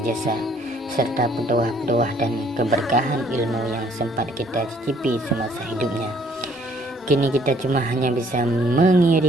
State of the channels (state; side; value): normal; both; correlation 0.62